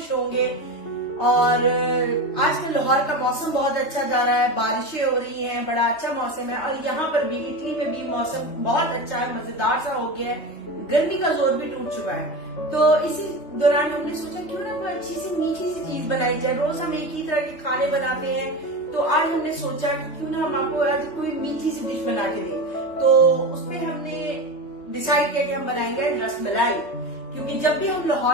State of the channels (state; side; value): late; right; 3.2 ms